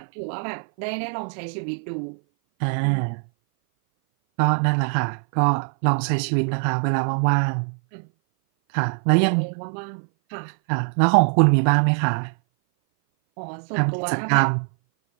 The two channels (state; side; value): silent; left; 58 dB below the other